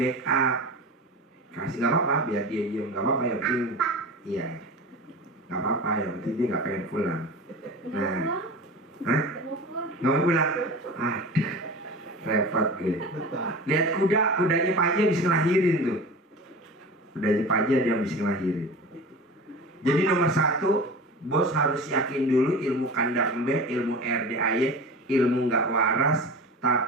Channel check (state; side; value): normal; both; correlation 0.33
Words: Kasih nggak apa-apa, biar dia diem, nggak apa-apa, yang penting iya, nggak apa-apa, yang penting dia nggak pengen pulang. Nah, hah? Nggak mau pulang? Aduh, repot gue. Lihat kudanya Pak Haji habis ngelahirin tuh. Kudanya Pak Haji dia habis ngelahirin. Jadi nomor 1, bos harus yakin dulu ilmu kandang embe, ilmu RDAY, ilmu nggak waras,